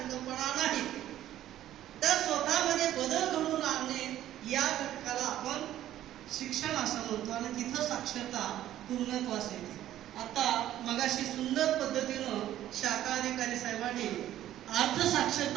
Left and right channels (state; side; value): quieter; left; 12.7 dB